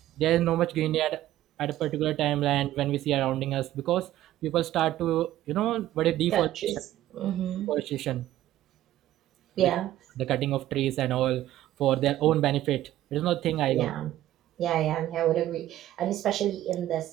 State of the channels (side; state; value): left; quieter; 13.7 dB